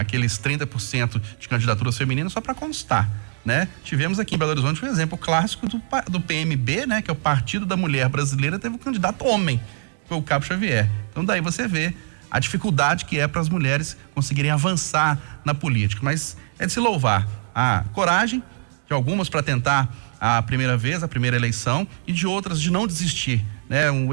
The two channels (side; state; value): left; silent; digital silence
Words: 30% de candidaturas femininas só para constar, né? Tivemos aqui em Belo Horizonte um exemplo clássico do PMB, né? Que é o Partido da Mulher Brasileira, teve um candidato homem, que foi o Cabo Xavier. Então daí você vê a dificuldade que é para as mulheres conseguirem avançar na política. Mas é de se louvar a coragem de algumas para tentar a primeira vez, a primeira eleição, e de outras de não desistir, né? Um